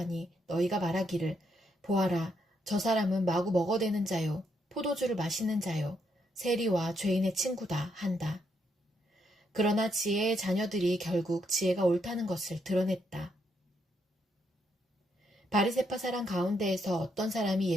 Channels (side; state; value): both; normal; correlation 0.77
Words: 너희가 말하기를 보아라 저 사람은 마구 먹어대는 자요 포도주를 마시는 자요 세리와 죄인의 친구다 한다. 그러나 지혜의 자녀들이 결국 지혜가 옳다는 것을 드러냈다. 바리새파 사람 가운데에서 어떤 사람이